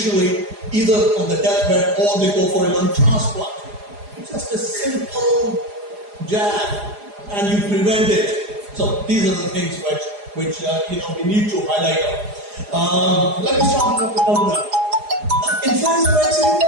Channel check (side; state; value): left; late; 4.9 ms